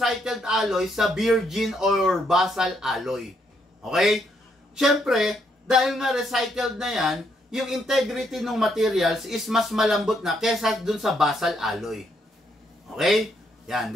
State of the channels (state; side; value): normal; both; correlation 0.74